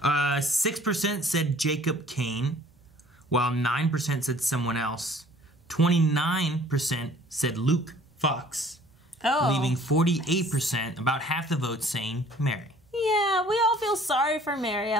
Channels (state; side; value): normal; both; correlation 0.54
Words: Wow. 6% said Jacob Kane, while 9% said someone else. 29% said Luke Fox, leaving 48%, about half the vote, saying Mary. Yeah, we all feel sorry for Mary.